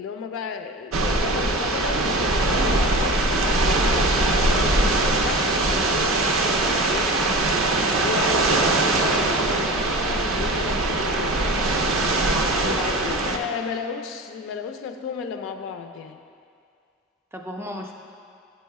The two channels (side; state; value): both; normal; correlation 0.32